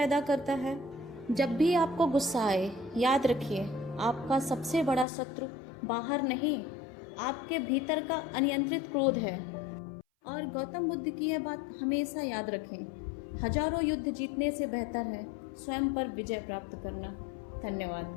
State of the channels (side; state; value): right; drops out; at 5.1 s